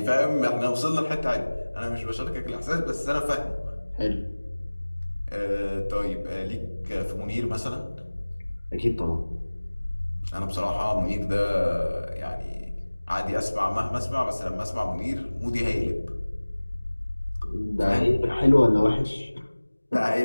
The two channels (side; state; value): both; inverted; correlation -1.00